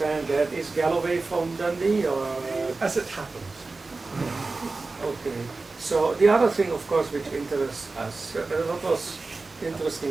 that. Is Galloway from Dundee or? As it happens. Okay. So the other thing, of course, which interests us, what was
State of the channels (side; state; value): left; quieter; 3.7 dB